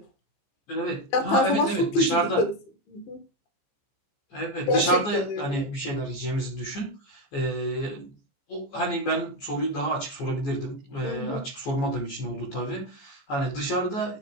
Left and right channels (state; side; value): late; right; 14 ms